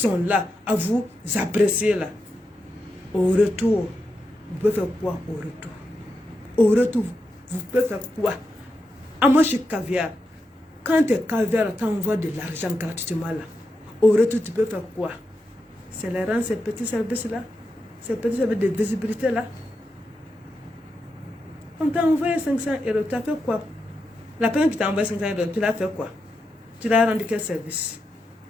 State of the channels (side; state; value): both; normal; correlation 0.86